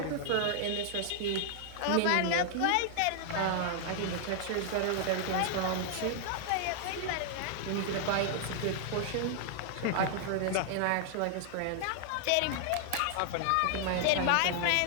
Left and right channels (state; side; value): different; both; correlation -0.01